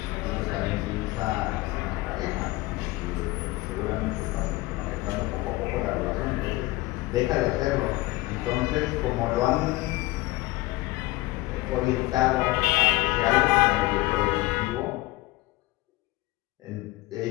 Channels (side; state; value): right; quieter; 19.7 dB